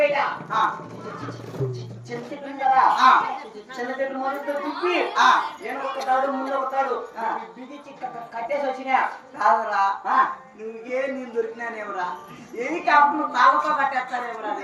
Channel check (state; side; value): identical; both; correlation 1.00